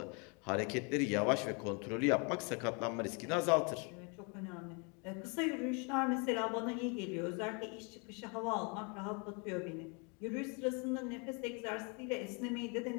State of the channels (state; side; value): quieter; right; 33.9 dB